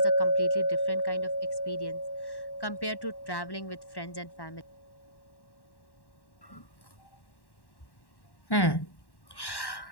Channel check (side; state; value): right; late; 1.1 ms